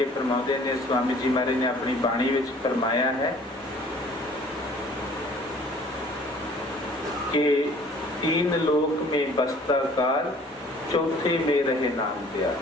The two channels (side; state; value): both; normal; correlation 0.53